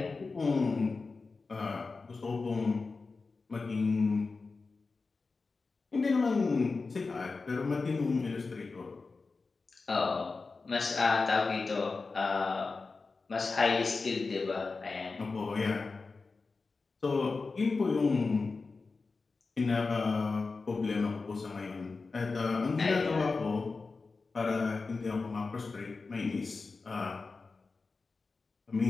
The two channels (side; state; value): right; quieter; 4.1 dB